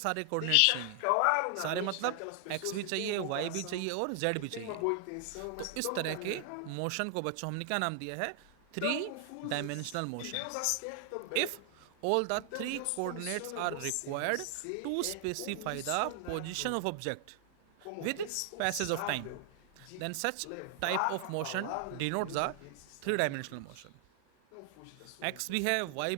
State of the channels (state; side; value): different; both; correlation 0.00